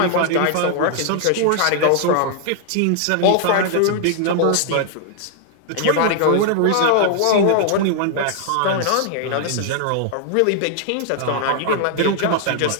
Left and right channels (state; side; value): different; both; correlation 0.00